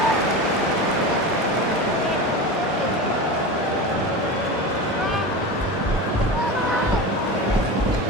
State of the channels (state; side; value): normal; both; correlation 0.27